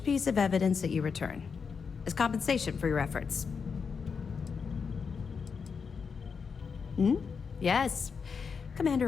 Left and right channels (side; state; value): right; quieter; 5.8 dB